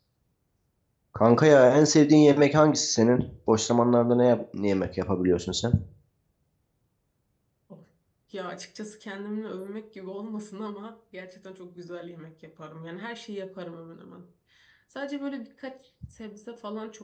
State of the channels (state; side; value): identical; both; correlation 1.00